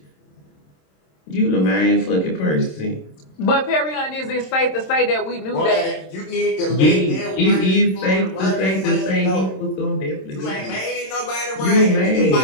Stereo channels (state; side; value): late; right; 27 ms